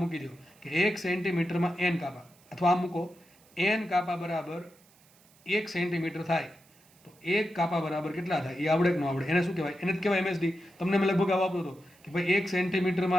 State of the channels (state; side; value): noise; right; hiss, 29 dB below the sound